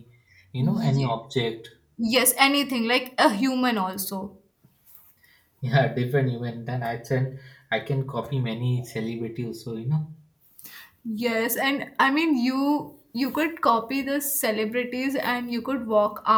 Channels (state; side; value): identical; both; correlation 1.00